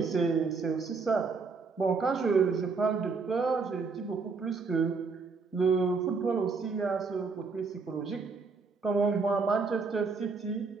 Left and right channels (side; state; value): left; quieter; 4.7 dB